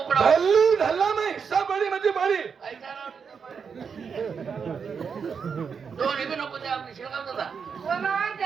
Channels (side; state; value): left; quieter; 6.2 dB